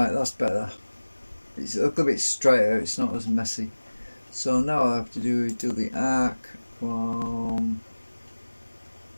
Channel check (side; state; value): both; inverted; correlation -1.00